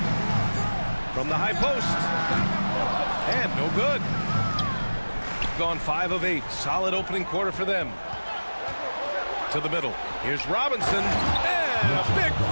From the high post. And no good. Gone 5 of 8. Solid opening quarter for them. To the middle. Here's Robinson. And a big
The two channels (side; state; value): both; inverted; correlation -1.00